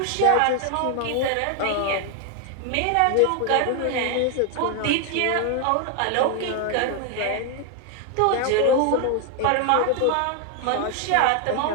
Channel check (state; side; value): different; both; correlation 0.01